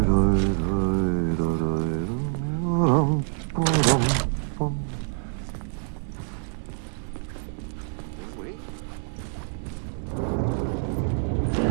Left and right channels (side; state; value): left; silent; digital silence